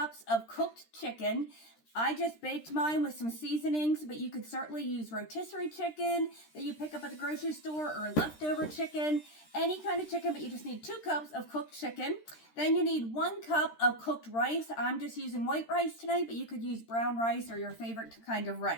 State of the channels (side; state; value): right; late; 13 ms